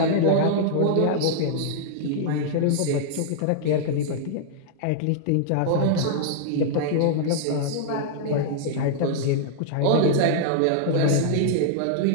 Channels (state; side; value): different; both; correlation -0.01